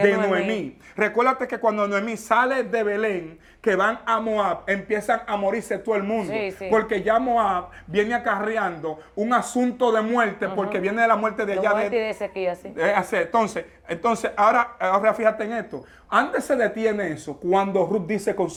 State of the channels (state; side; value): identical; both; correlation 1.00